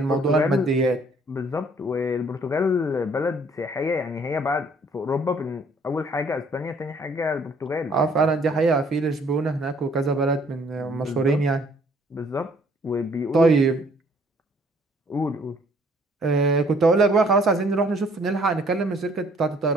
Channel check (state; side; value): normal; both; correlation 0.61